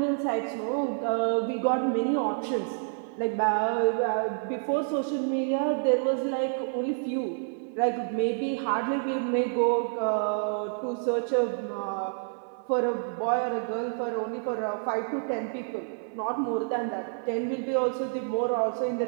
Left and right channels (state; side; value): silent; left; 59 dB below the other